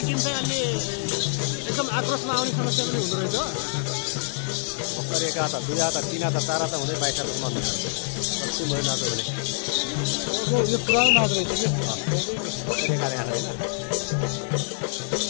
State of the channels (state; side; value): silent; right; digital silence